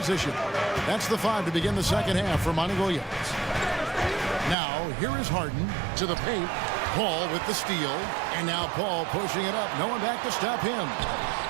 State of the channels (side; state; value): left; drops out; at 4.5 s